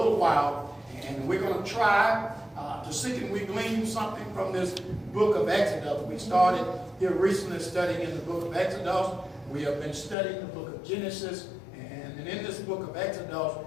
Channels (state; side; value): drops out; right; at 10.2 s